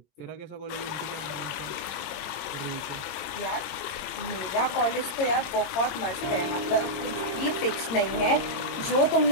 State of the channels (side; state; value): right; late; 22 ms